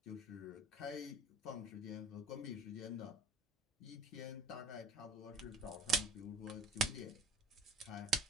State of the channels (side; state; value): both; normal; correlation 0.46